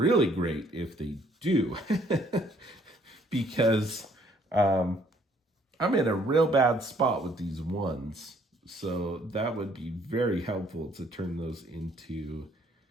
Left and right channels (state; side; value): normal; both; correlation 0.63